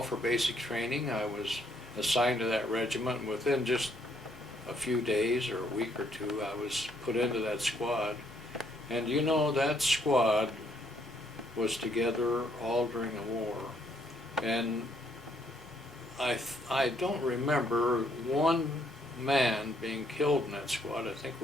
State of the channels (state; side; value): normal; both; correlation 0.70